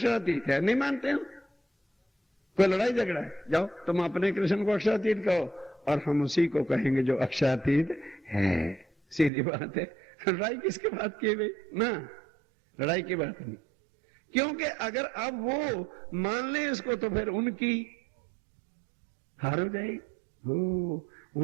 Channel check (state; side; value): drops out; left; at 9.3 s